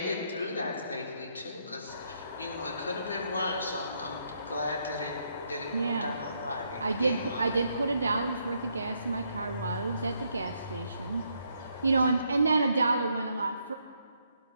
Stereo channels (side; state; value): both; inverted; correlation -0.75